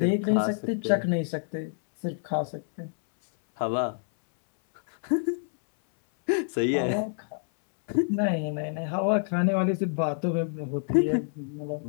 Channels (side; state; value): right; silent; 60 dB below the other